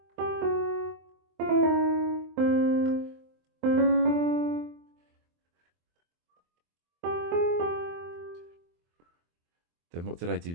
Then what did I do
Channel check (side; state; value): left; late; 23 ms